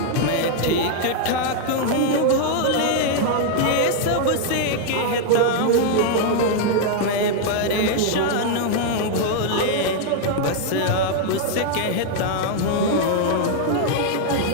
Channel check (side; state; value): both; different; correlation 0.00